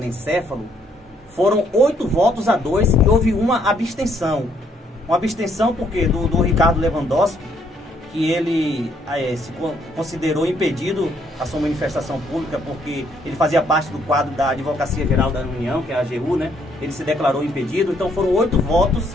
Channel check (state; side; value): normal; both; correlation 0.69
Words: foram 8 votos a 2 e houve uma abstenção. Uma abstenção porque do Ricardo Lewandowski, que ele se considerou impedido a sua manifestação pública porque ele fazia parte do quadro da Advocacia Geral da União, que é a AGU, né? Ele se declarou impedido, então foram 8